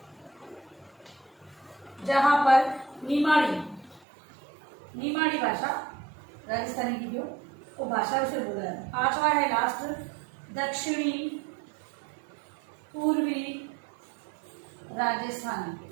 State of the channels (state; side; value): drops out; left; at 4.0 s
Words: जहां पर निमाड़ी भाषा राजस्थानी की जो वो भाषा उसे बोला जाता है। 5वां है लास्ट दक्षिणी पूर्वी